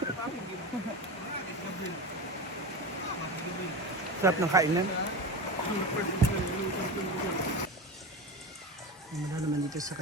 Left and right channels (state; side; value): normal; both; correlation 0.24